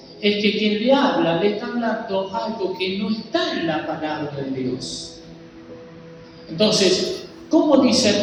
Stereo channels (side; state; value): both; identical; correlation 1.00